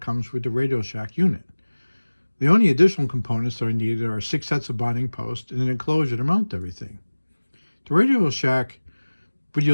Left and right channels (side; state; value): both; inverted; correlation -1.00